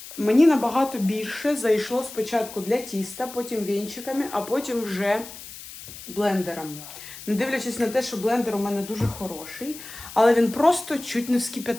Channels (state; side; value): noise; left; hiss, 14 dB below the sound